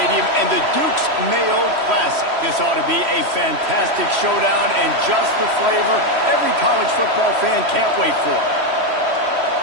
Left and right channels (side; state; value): left; late; 3.1 ms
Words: and the Deuce Mayo Classic. This ought to be a fantastic showdown and just the flavor every college football fan can't wait for.